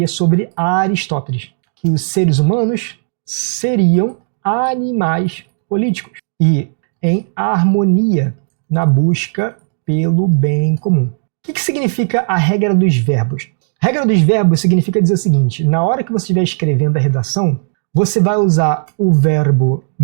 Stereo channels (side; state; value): left; silent; digital silence